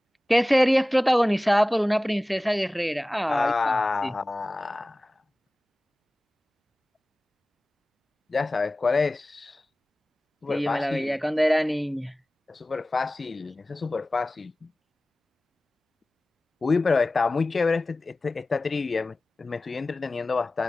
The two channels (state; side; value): normal; both; correlation 0.97